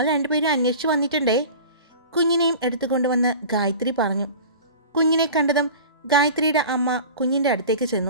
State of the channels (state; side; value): inverted; both; correlation -0.38